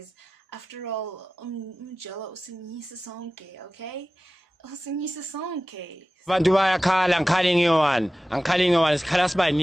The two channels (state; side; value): normal; both; correlation 0.95